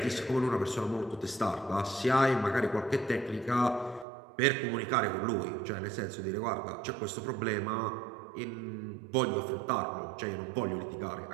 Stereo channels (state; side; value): drops out; left; at 4.0 s